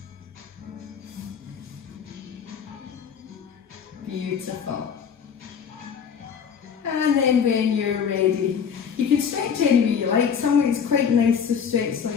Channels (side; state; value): right; quieter; 7.1 dB